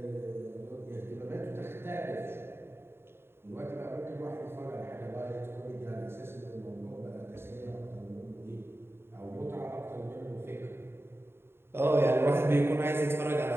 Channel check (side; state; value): left; late; 0.11 ms